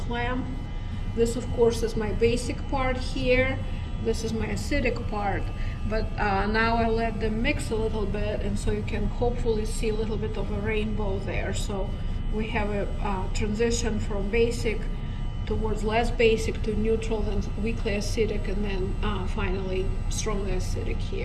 clamp. This of course is my basic part here, this is my acidic part, but now I let them mix a little bit, and so you can hopefully see a little bit of a rainbow there. So we have a transition from basic towards less basic to neutral, then weakly acidic, and then finally strongly acidic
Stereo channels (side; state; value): both; identical; correlation 1.00